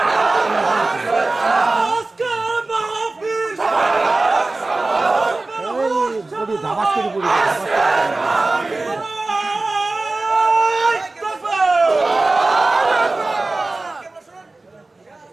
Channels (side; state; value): left; quieter; 3.2 dB